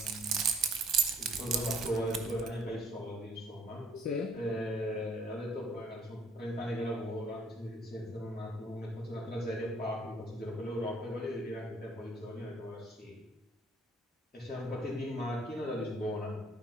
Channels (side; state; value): both; normal; correlation 0.61